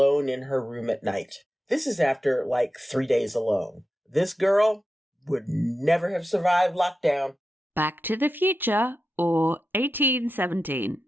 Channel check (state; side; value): normal; both; correlation 0.91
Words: in her room at night. This is after 3 days alone. This girl would never have survived lockdown. Back to the Future or 1817,